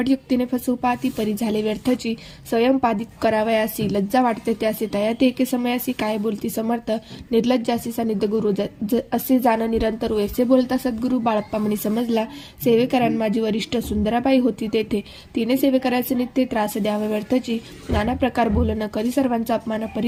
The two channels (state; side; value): identical; both; correlation 1.00